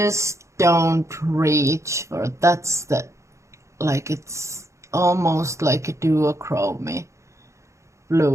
don't reach for, that's the, like, it's almost like a duochrome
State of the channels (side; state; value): left; late; 0.14 ms